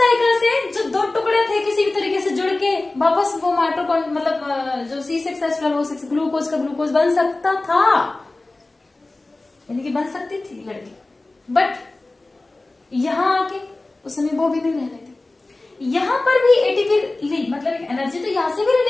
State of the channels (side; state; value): right; quieter; 3.0 dB